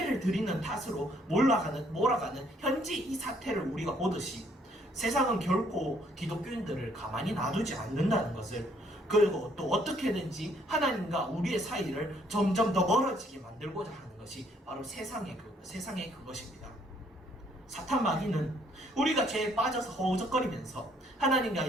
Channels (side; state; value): both; normal; correlation 0.66